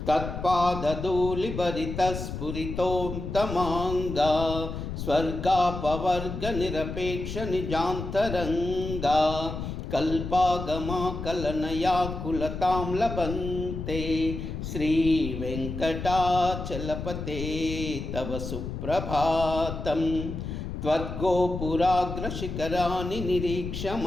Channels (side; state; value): left; noise; rumble, 6 dB below the sound